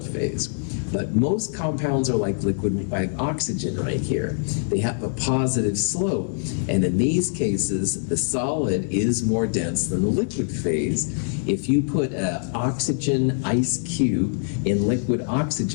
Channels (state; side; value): silent; right; 63 dB below the other